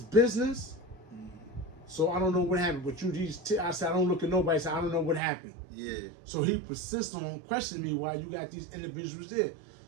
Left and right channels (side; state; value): left; drops out; at 5.2 s